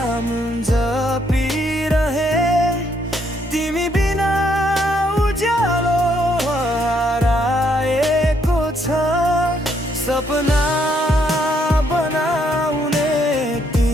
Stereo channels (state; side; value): normal; both; correlation 0.72